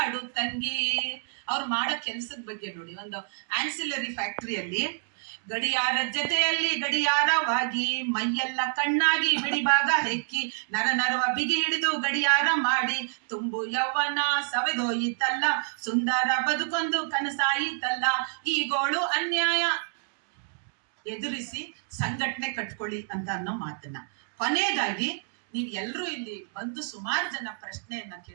ತಂಗಿ. ಅವ್ರು ಮಾಡೋ ಕೆಲ್ಸದ ಬಗ್ಗೆ ನೋಡಿ, ಒಂದು ಆನ್ಸಿಲರಿ ಫ್ಯಾಕ್ಟರಿಯಲ್ಲಿ ಗಡಿಯಾರ ಜೊತೆಯಲ್ಲಿ ಗಡಿಯಾರವಾಗಿ ಮೈಯೆಲ್ಲ ಕಣ್ಣಾಗಿ ಬಿಡಿಭಾಗ ಹೆಕ್ಕಿ ನರ ನರವ ಬಿಗಿ ಹಿಡಿದು ಗಡಿಯಾರ ಮಾಡಿ ತುಂಬು ಯೌವನ ಸವೆದೋಯಿತಲ್ಲ, ಸುಂದರ ಬದುಕೊಂದು ಕನಸಾಯಿತಲ್ಲ, ಈ ಗೋಳು ಅನ್ಯಾಯ ಎದುರಿಸಿ ಸಂಘಟನೆ ಕಟ್ಕೊಳ್ಳಿ ಅಂತ ಅನ್ನೋ ಮಾತನ್ನ. ಕೊನೆಯದಾಗಿ ನೀವ್ ಎಲ್ರೂ ಇಲ್ಲಿ ಬಂದು ಸುಮಾರು ಜನ ಪ್ರಶ್ನೆಯನ್ನ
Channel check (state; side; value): silent; left; digital silence